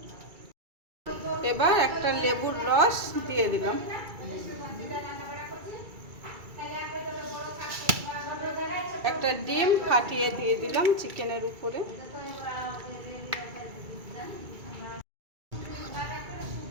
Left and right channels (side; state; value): left; late; 2.3 ms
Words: এবার একটা লেবুর রস দিয়ে দিলাম। একটা ডিম ফাটিয়ে দিয়ে দিলাম চিকেনের উপরে।